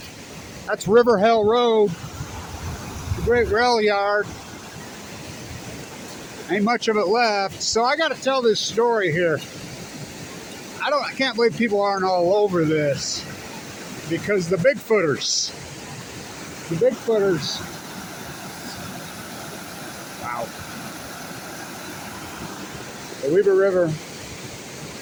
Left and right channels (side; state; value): both; identical; correlation 1.00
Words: That's River Hill Road, the great rail yard. Ain't much of it left. So I got to tell this story here. I can't believe people aren't all over this, because the Bigfooters, wow, the Weber River.